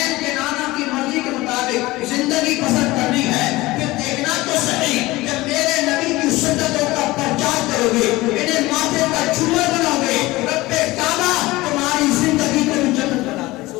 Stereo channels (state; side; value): quieter; right; 19.6 dB